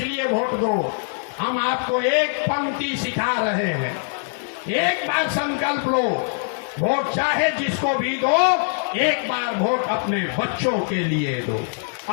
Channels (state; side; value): silent; right; digital silence